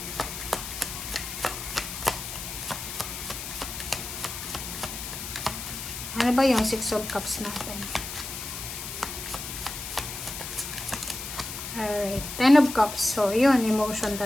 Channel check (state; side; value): noise; left; hiss, 7 dB below the sound